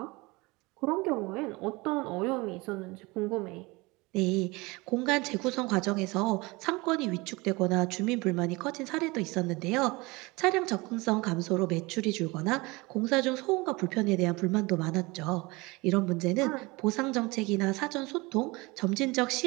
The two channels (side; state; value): left; quieter; 24.0 dB